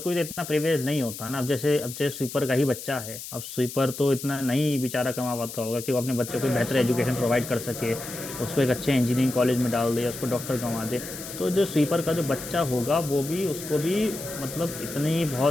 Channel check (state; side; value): noise; left; hiss, 10 dB below the sound